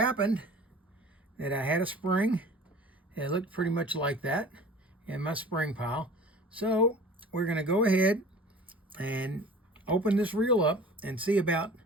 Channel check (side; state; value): both; normal; correlation 0.43